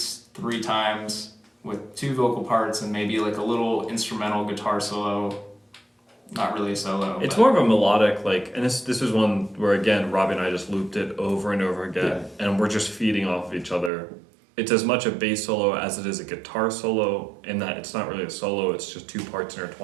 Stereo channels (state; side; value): drops out; left; at 13.9 s